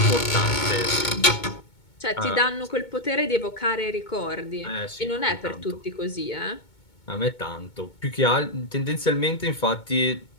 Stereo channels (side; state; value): right; late; 2.2 ms